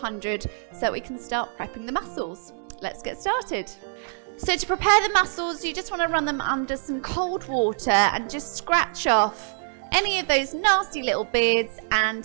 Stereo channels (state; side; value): silent; left; digital silence